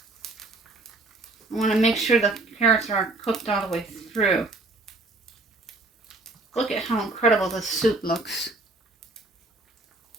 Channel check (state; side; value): quieter; left; 3.2 dB